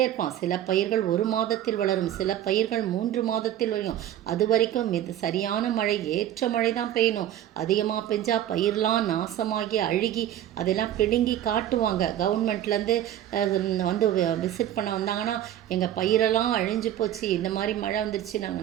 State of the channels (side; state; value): left; quieter; 11.7 dB